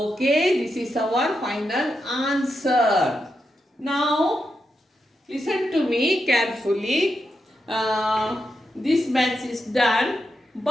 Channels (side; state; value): both; normal; correlation 0.86